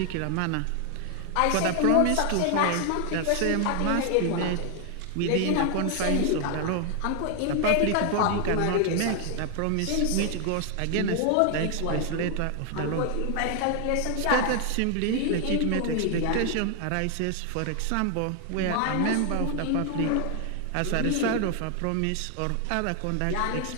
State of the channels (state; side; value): different; both; correlation 0.00